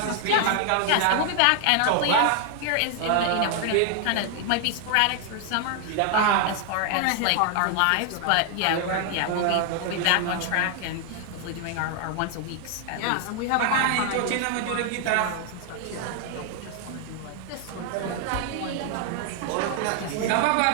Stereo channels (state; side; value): different; both; correlation 0.00